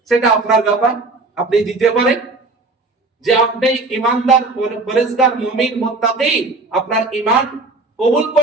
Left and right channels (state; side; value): quieter; left; 3.4 dB